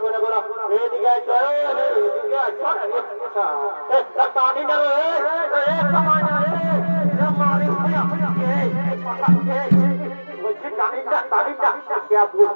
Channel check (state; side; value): inverted; both; correlation -1.00